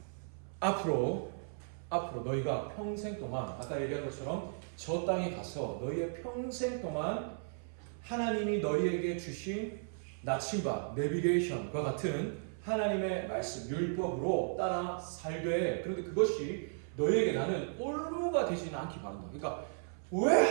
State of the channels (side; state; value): left; silent; 54 dB below the other